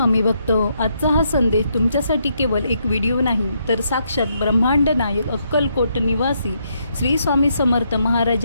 भक्त. आजचा हा संदेश तुमच्यासाठी केवळ एक व्हिडिओ नाही तर साक्षात ब्रह्मांड नायक अक्कलकोट निवासी श्री स्वामी समर्थ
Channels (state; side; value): inverted; both; correlation -0.76